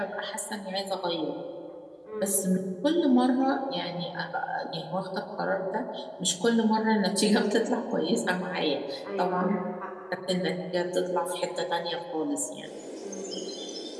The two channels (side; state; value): both; identical; correlation 1.00